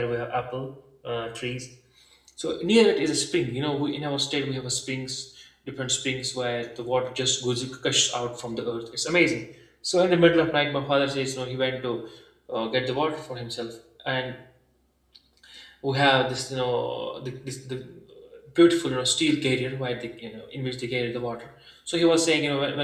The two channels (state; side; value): identical; both; correlation 1.00